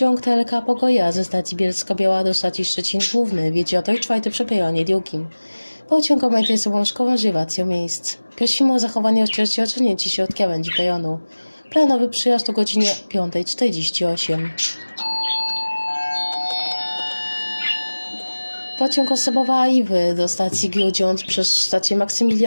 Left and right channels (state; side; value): inverted; both; correlation -1.00